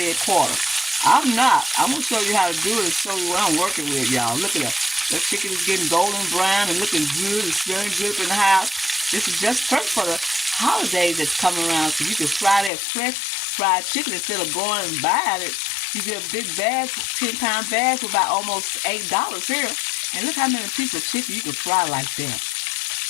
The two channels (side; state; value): right; drops out; at 12.7 s